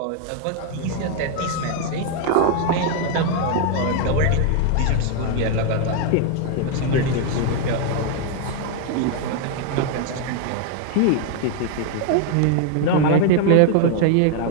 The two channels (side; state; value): both; different; correlation 0.00